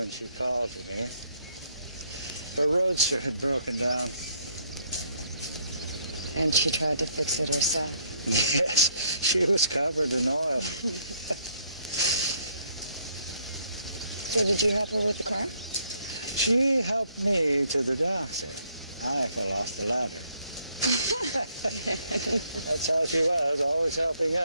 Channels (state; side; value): inverted; both; correlation -0.69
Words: she called to me. Her roadster had broken down. And she tried to fix it herself. Yes, she was covered in oil. So did you help her with the car? She helped me to the doctor. I fell off the ladder. That's how she was, always helping